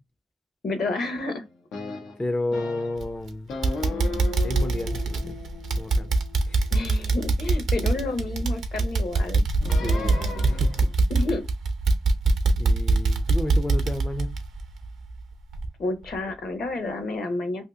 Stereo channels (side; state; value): both; normal; correlation 0.86